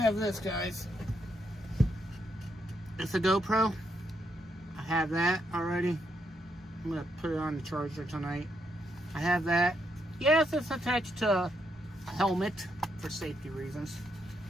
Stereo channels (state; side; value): normal; both; correlation 0.79